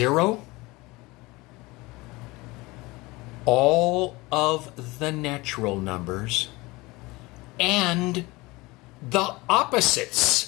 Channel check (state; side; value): quieter; right; 22.5 dB